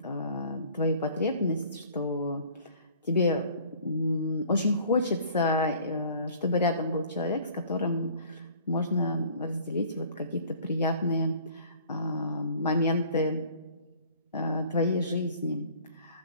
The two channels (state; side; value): inverted; both; correlation -0.51